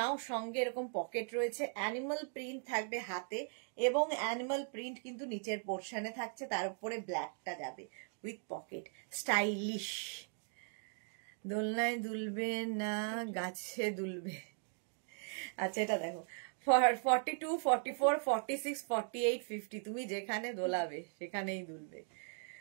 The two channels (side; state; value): left; silent; 52 dB below the other